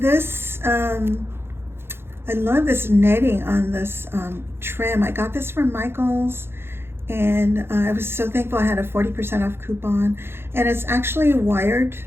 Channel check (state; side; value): late; left; 0.11 ms